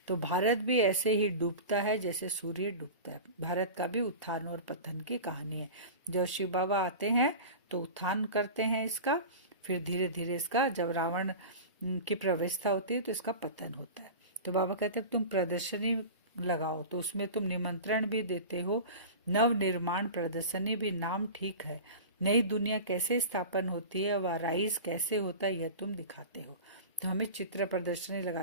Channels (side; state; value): both; inverted; correlation -0.31